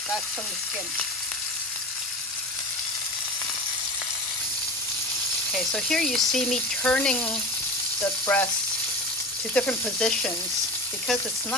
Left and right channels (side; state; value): both; normal; correlation 0.31